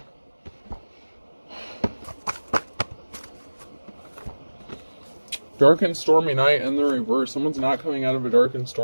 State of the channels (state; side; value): inverted; both; correlation -1.00